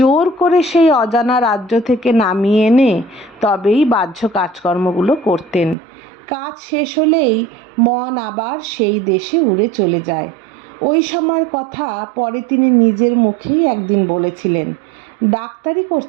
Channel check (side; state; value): left; drops out; at 5.8 s